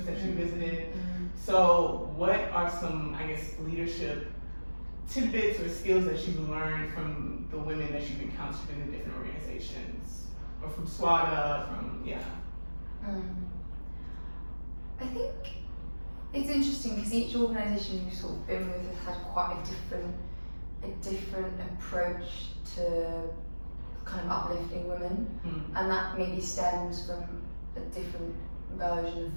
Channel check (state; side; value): inverted; both; correlation -1.00